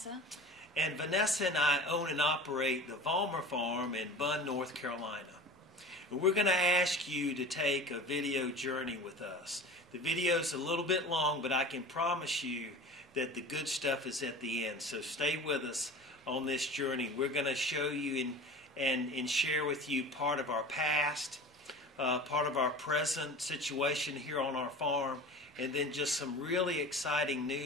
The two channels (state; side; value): normal; both; correlation 0.37